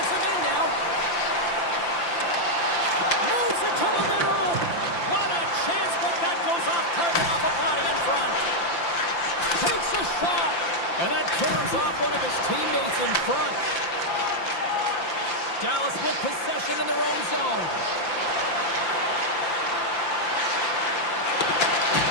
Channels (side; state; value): right; late; 5.8 ms